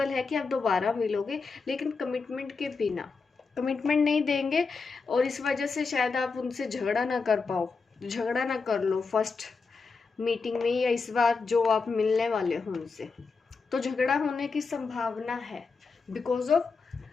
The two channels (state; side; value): quieter; right; 4.6 dB